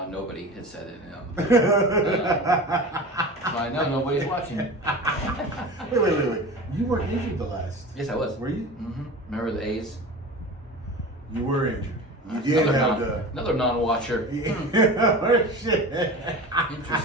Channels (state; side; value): normal; both; correlation 0.33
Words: had said it. I know nobody's watching. Wait. You weren't injured the last. Yes, I was. Were you? Mm-hmm. Remember the A's? You were injured. You did have another non-watcher. Shit.